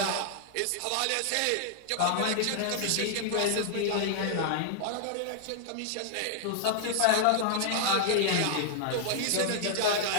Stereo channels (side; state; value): both; different; correlation -0.01